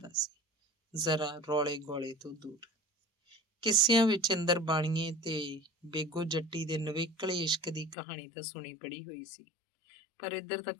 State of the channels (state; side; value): drops out; right; at 8.0 s